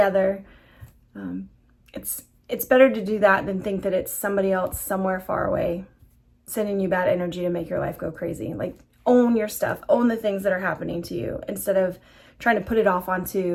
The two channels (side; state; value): both; identical; correlation 1.00